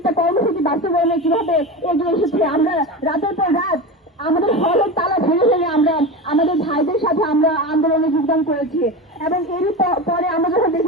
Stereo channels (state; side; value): normal; both; correlation 0.24